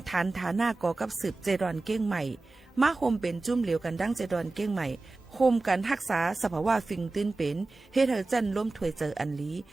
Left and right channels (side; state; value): left; quieter; 3.3 dB